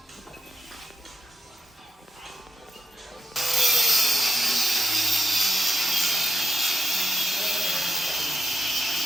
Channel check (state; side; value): normal; both; correlation 0.86